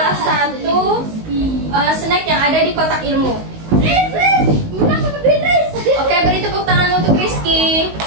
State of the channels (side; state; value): left; late; 19 ms